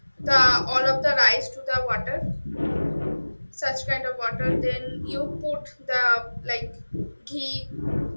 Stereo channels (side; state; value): both; inverted; correlation -1.00